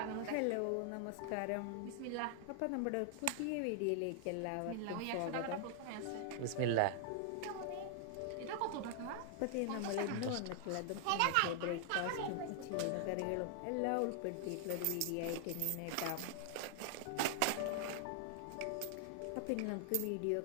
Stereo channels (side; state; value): both; different; correlation 0.00